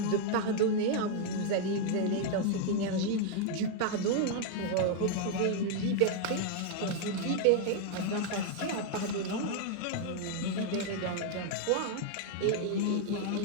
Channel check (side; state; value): both; different; correlation 0.00